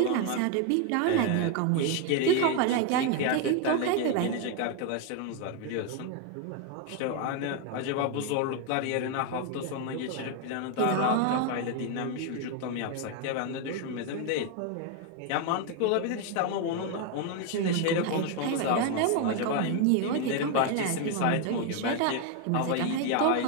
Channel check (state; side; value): different; both; correlation 0.01